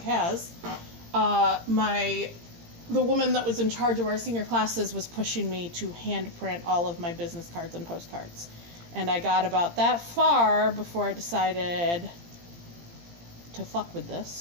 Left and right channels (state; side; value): late; left; 17 ms